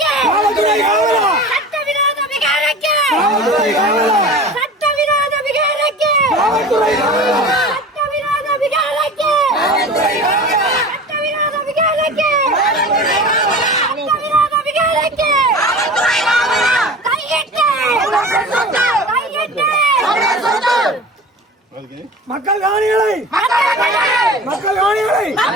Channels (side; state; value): both; normal; correlation 0.37